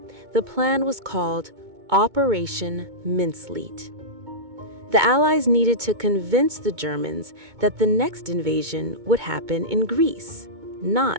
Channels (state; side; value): late; left; 2.2 ms